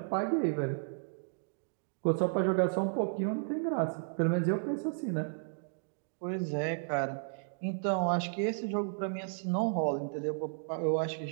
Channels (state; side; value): silent; left; digital silence